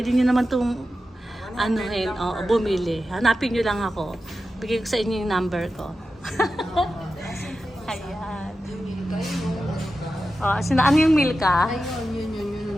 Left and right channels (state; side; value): normal; both; correlation 0.92